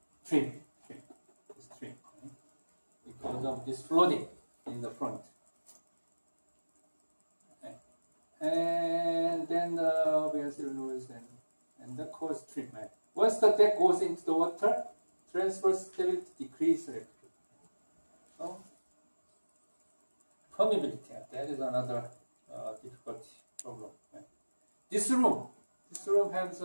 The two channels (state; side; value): inverted; both; correlation -1.00